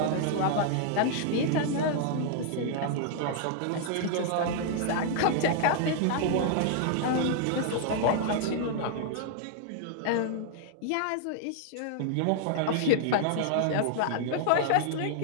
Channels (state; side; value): different; both; correlation -0.01